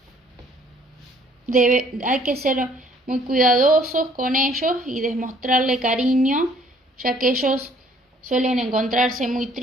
Hay que ser muy cuidadosos con ellos y demostrarle cariño, ya que ellos suelen encontrarse muy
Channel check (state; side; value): normal; both; correlation 0.59